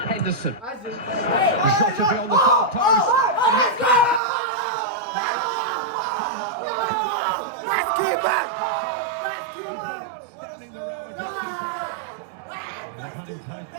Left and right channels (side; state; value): left; drops out; at 4.2 s